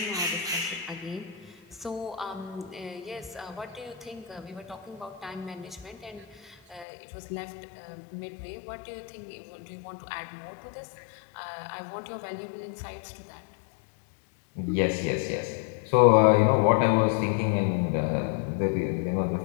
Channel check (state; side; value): drops out; right; at 6.9 s